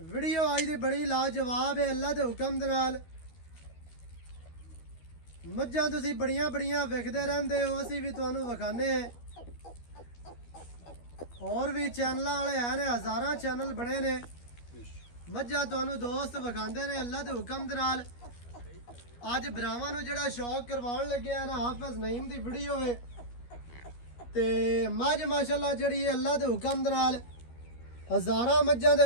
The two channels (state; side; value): late; right; 12 ms